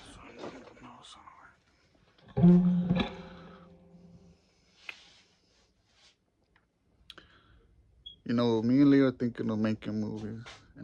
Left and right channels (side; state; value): both; identical; correlation 1.00